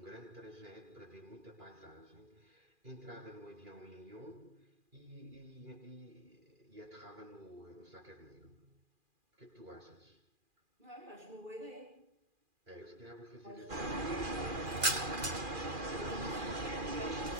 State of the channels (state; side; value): late; left; 2.4 ms